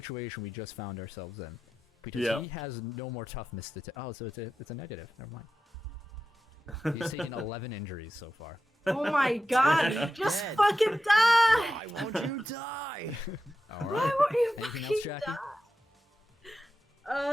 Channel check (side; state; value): both; normal; correlation 0.91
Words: we just found ourselves in. Because he has no more toughness to... Oh, so it's a negative. Never mind. He's taken 11 injuries so far. Oh my god! Just Dead. fucking die! Why won't you die? All Why right. won't you Anything fucking else, Jackie?